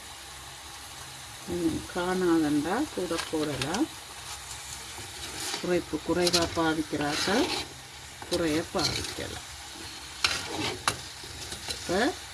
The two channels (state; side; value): identical; both; correlation 1.00